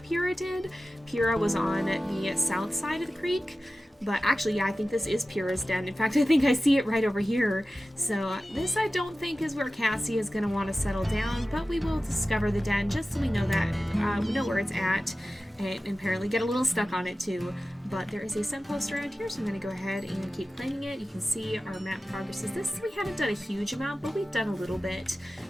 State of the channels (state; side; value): normal; both; correlation 0.95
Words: Pyrrha did. Pyrrha was on the south side of the creek. But actually, yeah, I think this is Pyrrha's den. In fact, I think I see it right over here. So this I don't think is where Cassie is going to want to settle down, but we will discover the den just so we know that, we know where it's at, and apparently get a little stuck on it too. But there is a scent post around here, so I'm going to go ahead and keep claiming it. You can see our map progress is this. We haven't done a huge amount, but we've done a little bit.